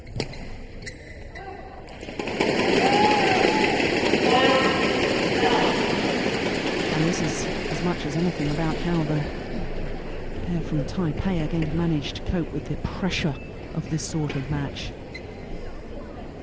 And this is as much as anything about how the pair from Taipei are going to manage to cope with the pressure of this sort of match.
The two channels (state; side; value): identical; both; correlation 1.00